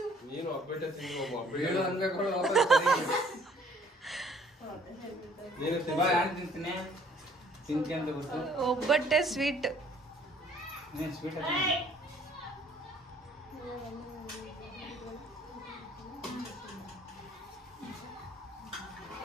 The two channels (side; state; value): both; normal; correlation 0.58